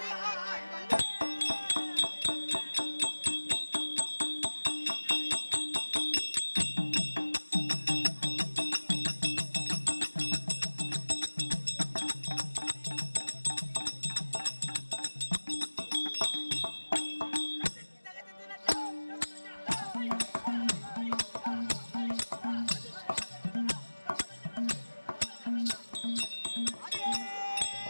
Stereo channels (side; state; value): both; inverted; correlation -1.00